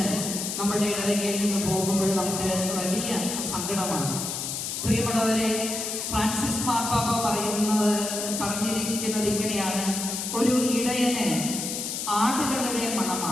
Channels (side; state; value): left; noise; hiss, 4 dB below the sound